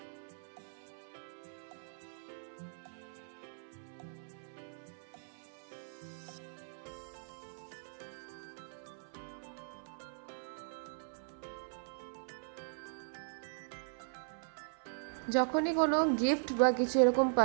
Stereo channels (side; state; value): left; silent; 52 dB below the other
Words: যখনই কোনো গিফট বা কিছু এরকম